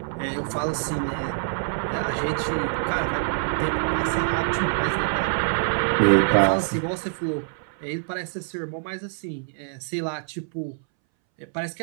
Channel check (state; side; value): silent; left; 61 dB below the other